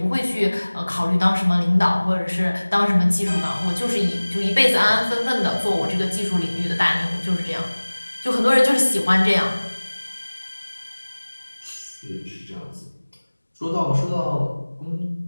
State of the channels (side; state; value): both; inverted; correlation -1.00